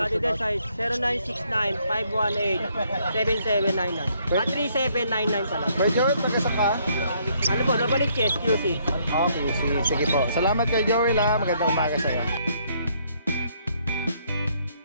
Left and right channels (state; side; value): inverted; both; correlation -0.69